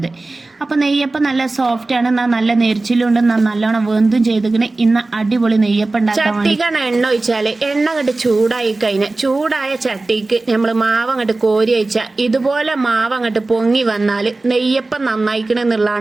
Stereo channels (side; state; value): left; quieter; 3.2 dB